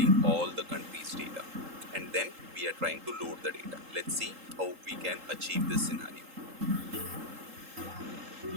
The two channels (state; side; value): late; left; 3.8 ms